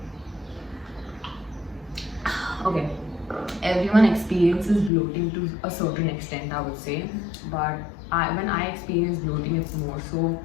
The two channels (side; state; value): right; drops out; at 4.9 s